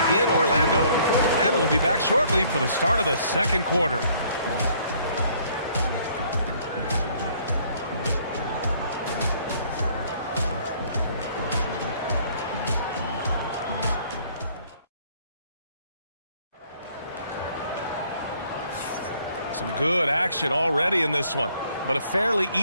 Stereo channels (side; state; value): both; inverted; correlation -0.62